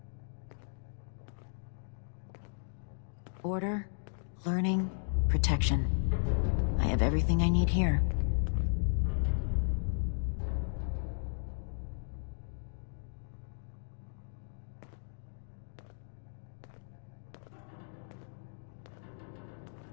Order, learning, protection. I have everything I need here.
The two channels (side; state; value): right; silent; digital silence